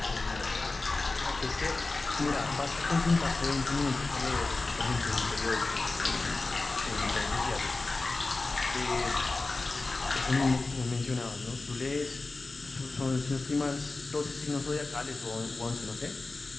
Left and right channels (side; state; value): right; quieter; 3.4 dB